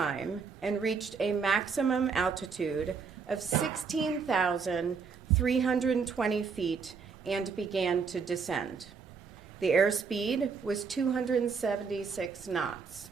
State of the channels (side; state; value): left; quieter; 5.5 dB